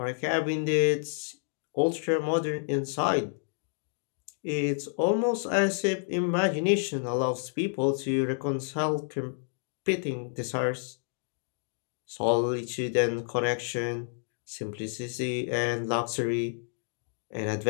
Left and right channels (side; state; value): right; silent; digital silence